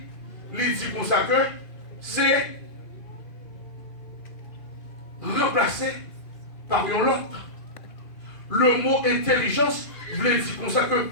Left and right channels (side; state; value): right; late; 2.4 ms